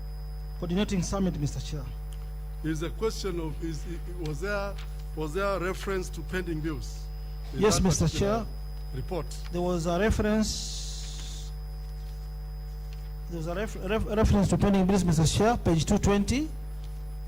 coordinating summit, Mr. Chair. Is the question of was there reference to pending bills? in Yes, that Mr. particular Chair. Report. There was a reference. There was a reference to pending bills, Mr. Chair, page 220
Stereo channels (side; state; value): both; identical; correlation 1.00